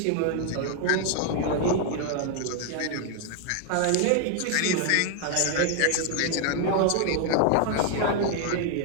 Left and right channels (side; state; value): both; different; correlation 0.00